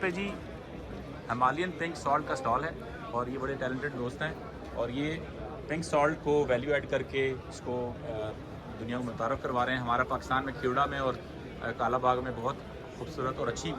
پہ جی ہمالین پنک سالٹ کا سٹال ہے اور یہ بڑے ٹیلنٹڈ دوست ہیں اور یہ پنک سالٹ کو ویلیو ایڈ کر کے اس کو دنیا کو متعارف کروا رہے ہیں. ہمارا پاکستان میں کھیوڑا میں اور کالا باغ میں بہت خوبصورت اور اچھی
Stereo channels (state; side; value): identical; both; correlation 1.00